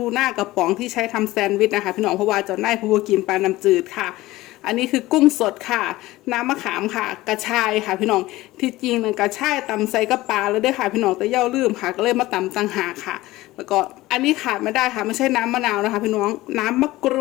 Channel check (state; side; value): quieter; right; 17.9 dB